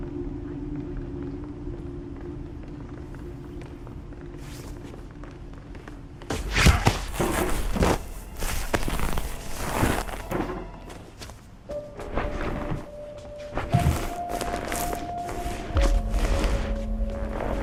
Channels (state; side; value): identical; both; correlation 1.00